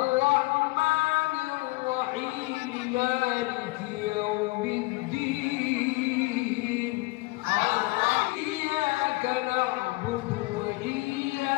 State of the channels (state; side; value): quieter; right; 22.6 dB